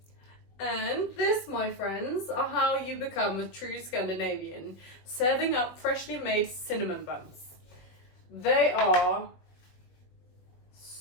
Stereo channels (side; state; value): right; late; 21 ms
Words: And this, my friends, are how you become a true Scandinavian, serving up freshly made cinnamon buns. They are